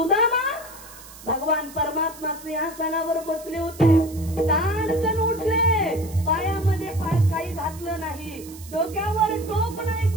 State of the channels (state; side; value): noise; right; hiss, 18 dB below the sound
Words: भगवान परमात्मा सिंहासनावर बसले होते. ताणकन उठले, पायामध्ये काही घातलं नाही, डोक्यावर टोप नाही